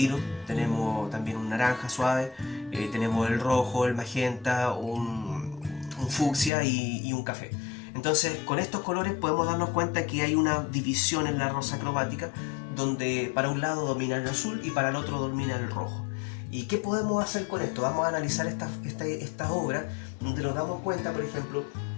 Tenemos también un naranja suave, tenemos el rojo, el magenta, un fucsia y un café. Entonces, con estos colores podemos darnos cuenta que hay una división en la rosa cromática, donde para un lado domina el azul y para el otro domina el rojo. ¿Y qué podemos hacer con esto? Vamos a analizar esta obra, donde nos damos cuenta, por ejemplo,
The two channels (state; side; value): drops out; right; at 6.5 s